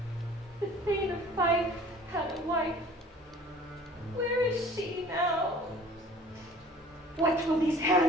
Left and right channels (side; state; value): both; normal; correlation 0.48